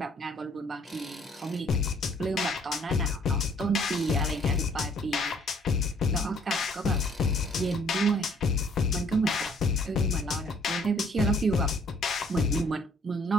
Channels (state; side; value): normal; both; correlation 0.61